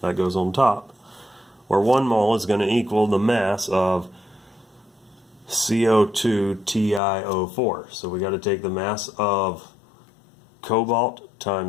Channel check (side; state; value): right; drops out; at 7.0 s